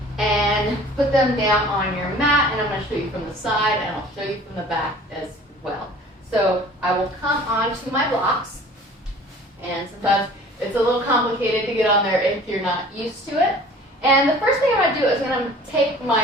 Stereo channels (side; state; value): both; normal; correlation 0.47